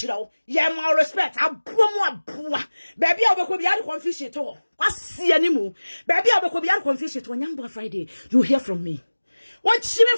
you. Yeah, more respect. I bomb. Baby, I will be out of confusion at all. Quasia anymore. Baby, I will be out of confusion when Young Friday. You hear from me. What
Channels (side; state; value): both; inverted; correlation -1.00